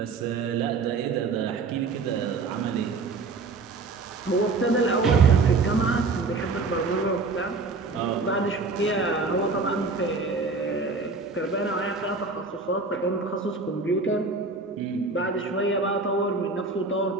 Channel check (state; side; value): quieter; left; 4.0 dB